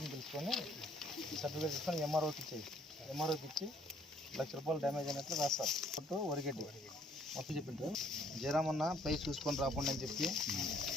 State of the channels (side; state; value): both; normal; correlation 0.63